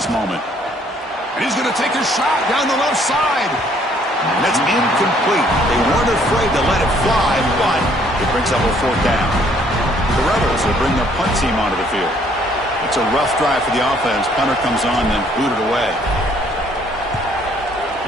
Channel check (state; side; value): normal; both; correlation 0.63